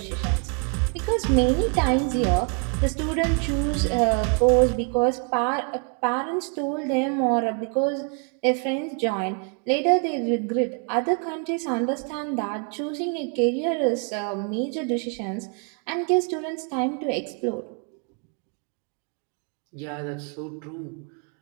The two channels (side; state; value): left; quieter; 38.6 dB